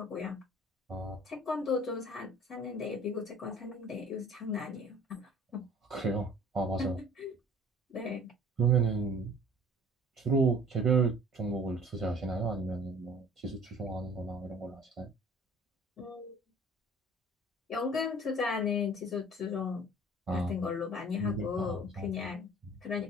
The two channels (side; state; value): both; normal; correlation 0.49